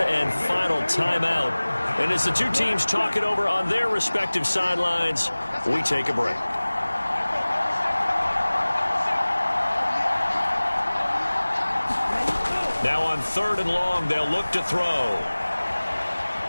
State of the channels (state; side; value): inverted; both; correlation -1.00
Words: and final timeout. And as the two teams talk it over on their respective sidelines, we take a break. Now on 3rd and long, they'll look to throw.